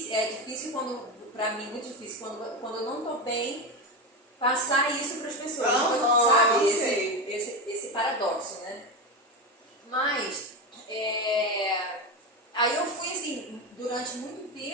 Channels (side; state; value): both; normal; correlation 0.17